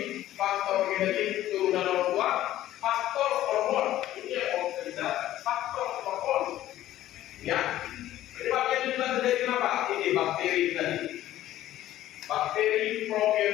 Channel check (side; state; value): right; quieter; 13.7 dB